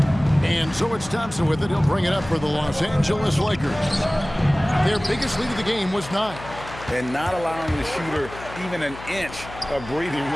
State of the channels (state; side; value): noise; left; hum, 14 dB below the sound